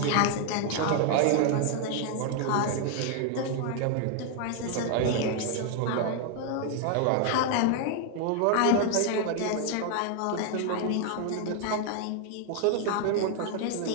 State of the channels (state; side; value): different; both; correlation 0.00